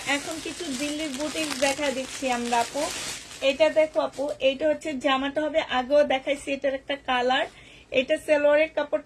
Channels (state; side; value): identical; both; correlation 1.00